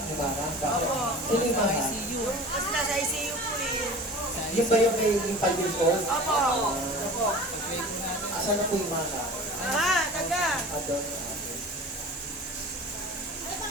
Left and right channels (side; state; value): both; normal; correlation 0.38